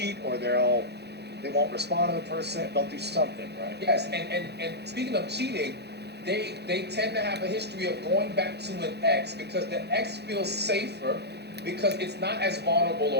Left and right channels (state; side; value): late; left; 0.48 ms